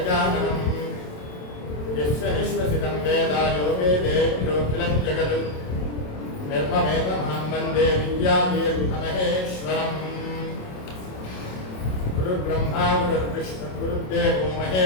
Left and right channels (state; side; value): late; right; 27 ms